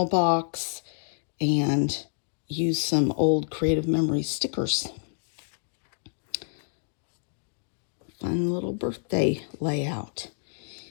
box and used some old Creative Memory stickers. Fun little birthday layout.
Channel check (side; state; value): right; silent; digital silence